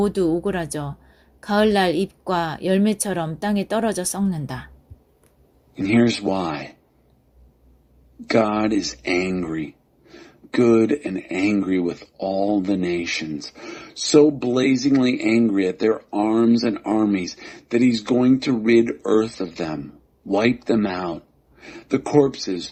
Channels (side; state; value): both; identical; correlation 1.00